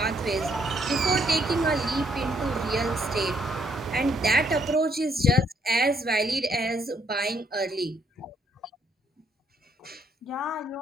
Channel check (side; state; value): both; normal; correlation 0.70